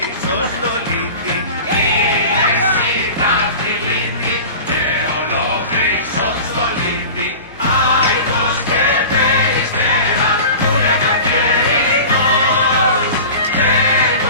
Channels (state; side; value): inverted; both; correlation -0.36